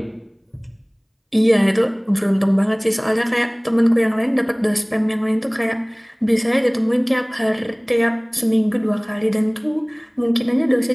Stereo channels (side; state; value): both; identical; correlation 1.00